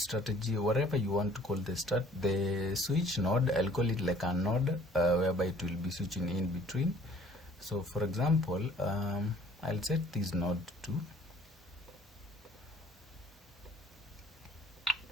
whatever you want to call the switch node. I'll call it like a node whereby it will be switching in between. So for example, I'll set this node to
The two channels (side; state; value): both; normal; correlation 0.56